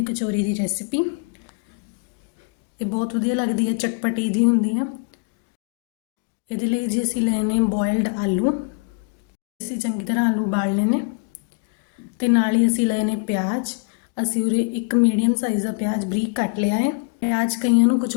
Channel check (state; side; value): quieter; right; 37.6 dB